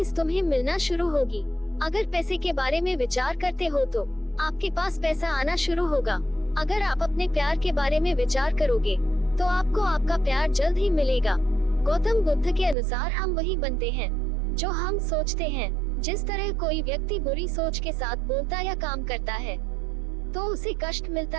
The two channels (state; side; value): drops out; left; at 12.8 s